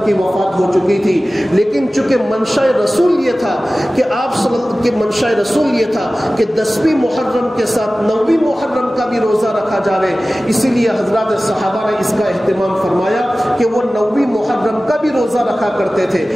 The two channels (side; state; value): both; normal; correlation 0.97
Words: کی وفات ہو چکی تھی، لیکن چونکہ منشاء رسول یہ تھا کہ منشاء رسول یہ تھا کہ 10ویں محرم کے ساتھ 9ویں محرم کا بھی روزہ رکھا جاوے، اسی لیے حضرات صحابہ نے اس کا اہتمام فرمایا کہ وہ 9ویں محرم کا بھی روزہ رکھا کرتے تھے۔